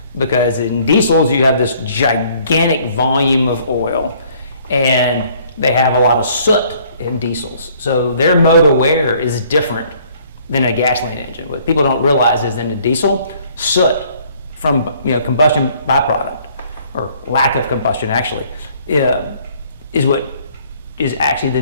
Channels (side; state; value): both; inverted; correlation -0.60